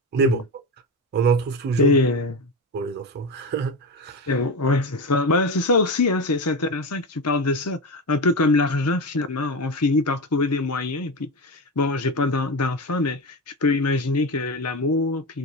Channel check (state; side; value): normal; both; correlation 0.19